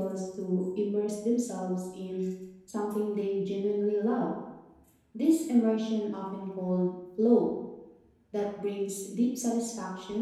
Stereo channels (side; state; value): both; identical; correlation 1.00